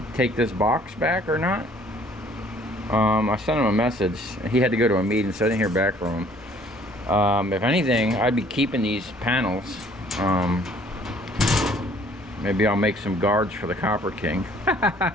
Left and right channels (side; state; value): both; normal; correlation 0.57